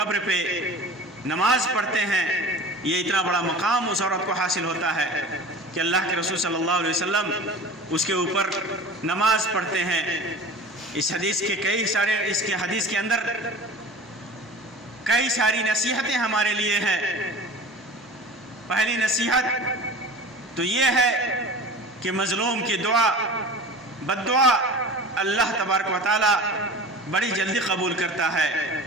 پہ نماز پڑھتے ہیں۔ یہ اتنا بڑا مقام اس عورت کو حاصل ہوتا ہے کہ اللہ کے رسول صلی اللہ علیہ وسلم اس کے اوپر نماز پڑھتے ہیں۔ اس حدیث کے اندر کئی ساری نصیحتیں ہمارے لیے ہیں۔ پہلی نصیحت تو یہ ہے کہ مظلوم کی دعا، بد دعا اللہ تبارک و تعالی بڑی جلدی قبول کرتا ہے۔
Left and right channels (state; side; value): normal; both; correlation 0.38